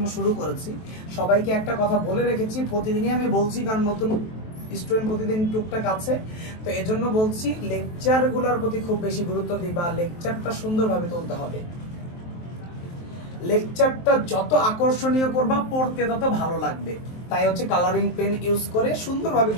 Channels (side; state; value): right; late; 23 ms